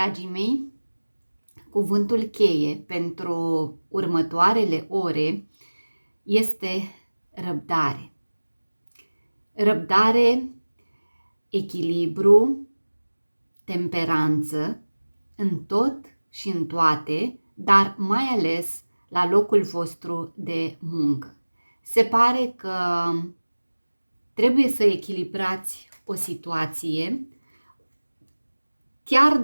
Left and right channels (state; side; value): inverted; both; correlation -1.00